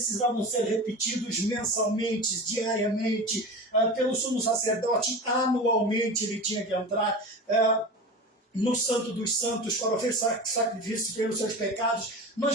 ser repetidos mensalmente, diariamente, pelo sumo sacerdote. Anualmente ele tinha que entrar no Santo dos Santos para oferecer sacrifício pelos seus pecados.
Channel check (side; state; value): both; normal; correlation 0.30